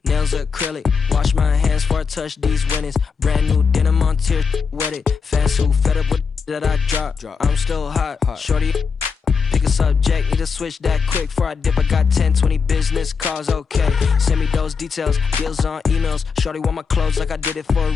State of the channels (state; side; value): quieter; right; 5.6 dB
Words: nails acrylic. Wash my hands before I touch these winnings. Brand new denim on tier, wet it. Fans who fed up with that I drop. I'm still hot. Shorty, pick a subject, need to switch that quick. Before I dip, I got 10, 20 business calls, okay. Send me those details, deals on emails. Shorty want my clothes like I did it for